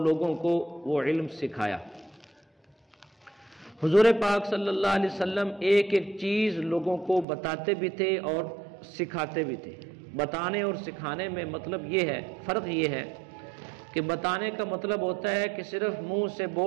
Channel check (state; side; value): drops out; left; at 7.2 s